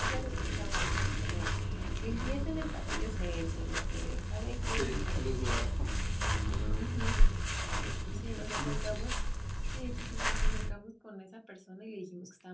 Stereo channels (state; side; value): identical; both; correlation 1.00